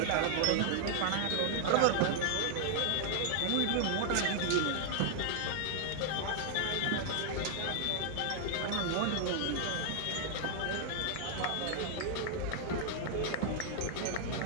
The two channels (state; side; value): different; both; correlation 0.00